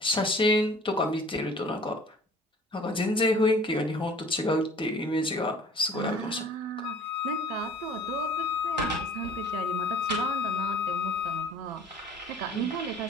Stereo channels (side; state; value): both; normal; correlation 0.49